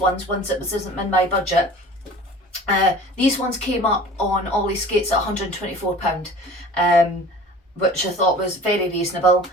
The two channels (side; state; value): both; normal; correlation 0.43